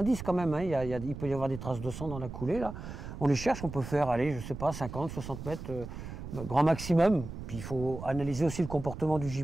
quand même, hein, il peut y avoir des traces de sang dans la coulée, là. On les cherche, on peut faire, allez, je sais pas, 50, 60 mètres, grand maximum. Puis il faut analyser aussi le comportement du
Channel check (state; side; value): noise; right; rumble, 10 dB below the sound